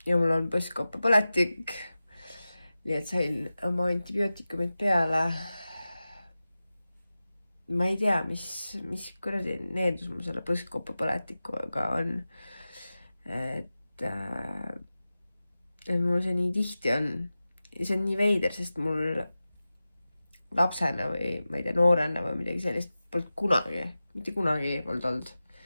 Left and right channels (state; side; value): inverted; both; correlation -0.95